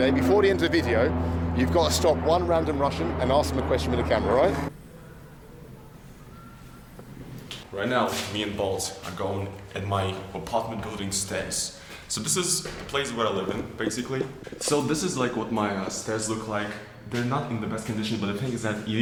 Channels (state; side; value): identical; both; correlation 1.00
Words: Before the end of the video, you've got to stop one random Russian and ask them a question with a camera, right? Right now, me and Balls are going at my apartment building stairs. So this is the place where I live in, basically. So this is like what my stairs look like. They're not in the best condition, but the thing is that it